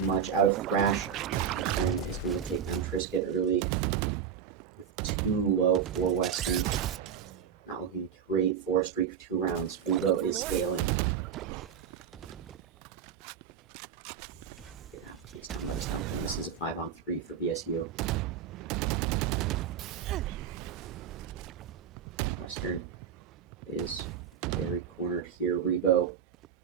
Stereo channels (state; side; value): quieter; left; 8.0 dB